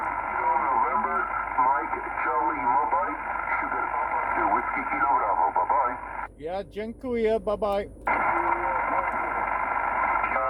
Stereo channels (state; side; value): identical; both; correlation 1.00